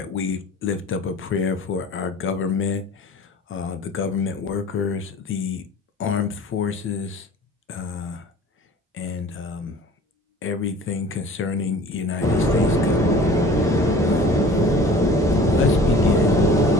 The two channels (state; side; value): normal; both; correlation 0.45